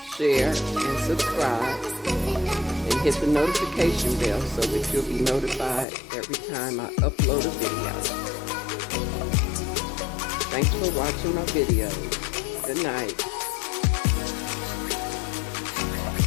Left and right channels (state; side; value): drops out; right; at 5.9 s